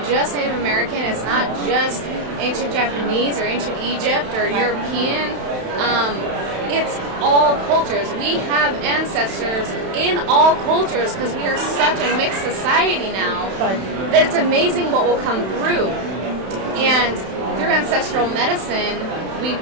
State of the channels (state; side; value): late; left; 31 ms